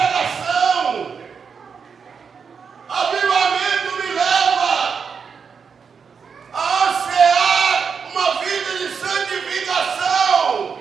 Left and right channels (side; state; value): left; quieter; 6.1 dB